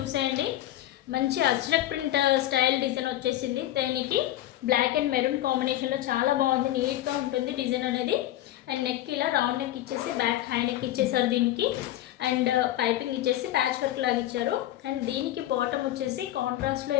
మంచి అజ్రక్ ప్రింట్ స్టైల్ డిజైన్ వచ్చేసింది. దీనికి బ్లాక్ అండ్ మెరూన్ కాంబినేషన్లో చాలా బాగుంది, నీట్గా ఉంటుంది డిజైన్ అనేది. అండ్ నెక్ ఇలా రౌండ్ నెక్ ఇచ్చేసి బ్యాక్ హై నెక్ ఇచ్చేసారు దీనికి. అండ్ పైపింగ్ ఇచ్చేసి ప్యాచ్ వర్క్ లాగా ఇచ్చారు. అండ్ దీనికి బాటమ్ వచ్చేసి కాంట్రాస్ట్లో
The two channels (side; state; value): right; quieter; 14.0 dB